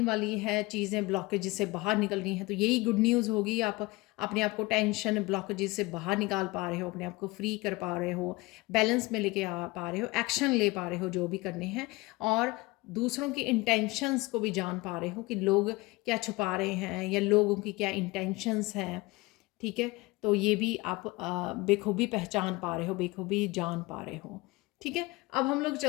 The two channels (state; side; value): quieter; right; 22.4 dB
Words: वाली है, चीज़ें ब्लॉकेजेस से बाहर निकल रही हैं। तो यही गुड न्यूज़ होगी, आप अपने आप को टेंशन ब्लॉकेजेस से बाहर निकाल पा रहे हो, अपने आप को फ्री कर पा रहे हो, बैलेंस में लेके आ पा रहे हो, एक्शन ले पा रहे हो जो भी करने हैं, और दूसरों की इंटेंशंस को भी जान पा रहे हो कि लोग क्या छुपा रहे हैं या लोगों की क्या इंटेंशंस हैं। ठीक है, तो ये भी आप बेखूबी पहचान पा रहे हो, बेखूबी जान पा रहे हो। ठीक है, अब हम लोग